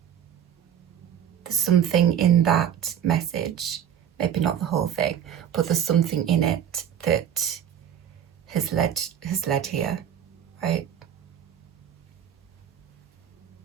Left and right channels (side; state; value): left; quieter; 9.4 dB